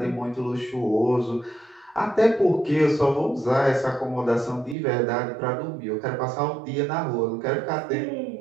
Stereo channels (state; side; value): drops out; left; at 4.8 s